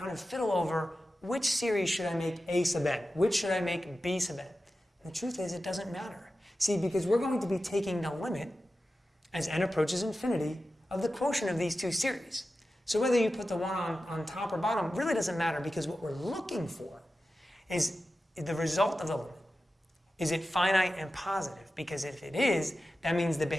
of fiddle over which series should I make A sub n, which should I make B sub n. And the truth is it doesn't matter. See, because we're going to be taking the limit as n approaches infinity of the quotient of these two series. So whether you put the one on top or bottom really doesn't matter, because what we're looking for is the result of the limit. Is it finite and positive? Because if it is, that means the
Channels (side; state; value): both; normal; correlation 0.93